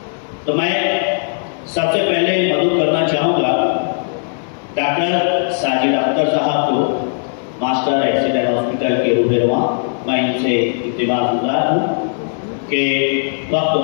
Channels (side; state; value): right; silent; digital silence